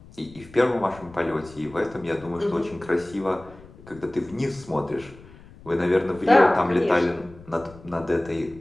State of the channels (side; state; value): left; noise; rumble, 21 dB below the sound